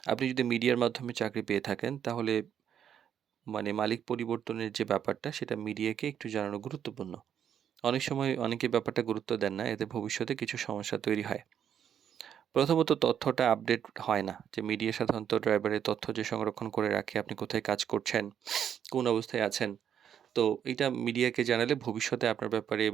আপনি যদি মিডিয়ার মাধ্যমে চাকরি পেয়ে থাকেন তাহলে মালিক পরিবর্তনের যে ব্যাপারটা সেটা মিডিয়াকে একটু জানানো গুরুত্বপূর্ণ। অনেক সময় অনেকে ব্যাপারটা গুরুত্ব দেন না। এতে ভবিষ্যতে কিছু সমস্যা তৈরি হয়। প্রথমত তথ্যটা আপডেট হয় না। যে মিডিয়া সাধারণত ড্রাইভারের তথ্য যে সংরক্ষণ করে রাখে, আপনি কোথায় কাজ করছেন, কোন অবস্থায় আছেন। তো এইটা মিডিয়াকে জানালে ভবিষ্যতে আপনার ব্যাপারে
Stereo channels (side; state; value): left; quieter; 9.0 dB